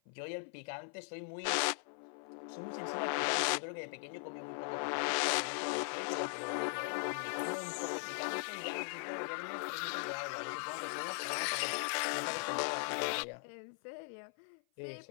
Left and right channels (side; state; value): right; silent; 51 dB below the other